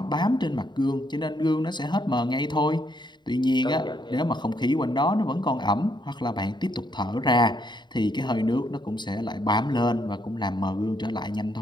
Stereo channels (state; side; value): late; right; 0.22 ms